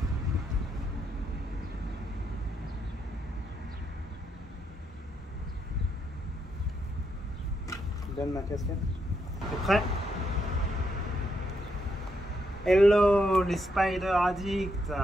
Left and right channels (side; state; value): both; normal; correlation 0.79